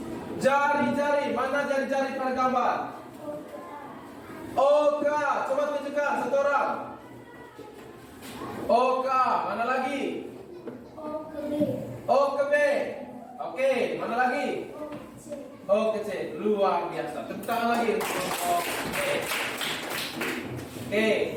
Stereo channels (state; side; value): identical; both; correlation 1.00